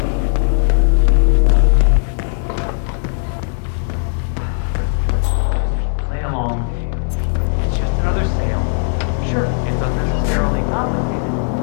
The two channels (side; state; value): right; silent; digital silence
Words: Play along. It's just another sale. Sure, it's unnecessarily complicated.